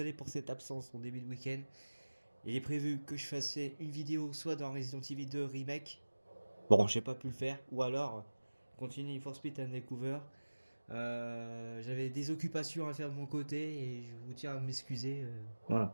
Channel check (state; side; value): inverted; both; correlation -1.00